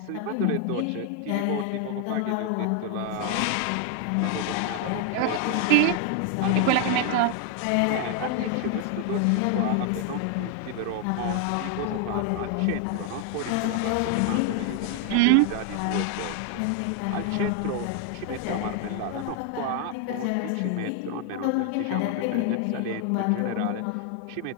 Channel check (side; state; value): both; different; correlation 0.00